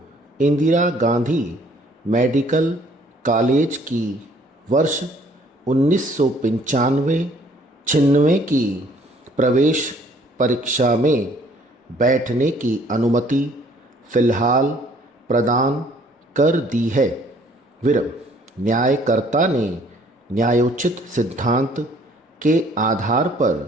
इंदिरा गांधी मेडिकल कॉलेज की वर्ष 1995-96 की प्रवेश परीक्षा में बैठने की अनुमति फ़िलहाल प्रदान कर दी है। न्यायकर्ता ने न्यायोचित सिद्धांत के आधार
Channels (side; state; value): both; normal; correlation 0.60